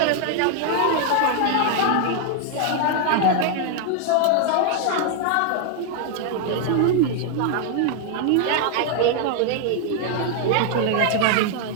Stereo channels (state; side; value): different; both; correlation 0.00